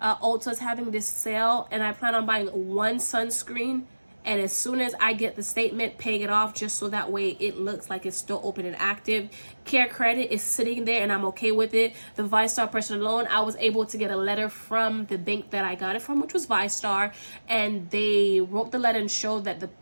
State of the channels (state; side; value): inverted; both; correlation -1.00